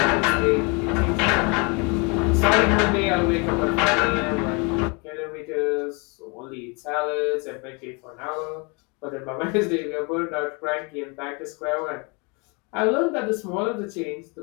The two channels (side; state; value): right; quieter; 31.3 dB